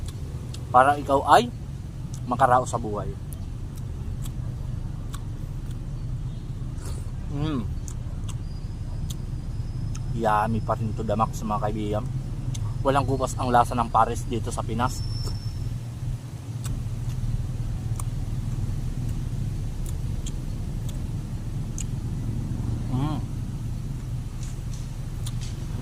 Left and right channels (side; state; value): both; identical; correlation 1.00